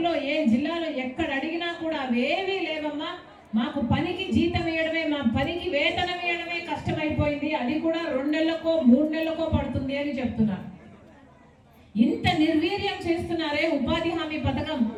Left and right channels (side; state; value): both; identical; correlation 1.00